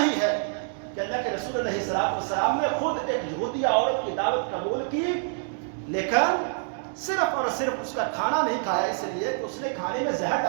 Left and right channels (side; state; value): left; silent; digital silence